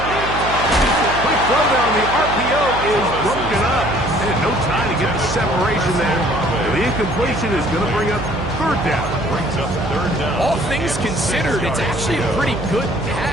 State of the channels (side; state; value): right; noise; hum, 7 dB below the sound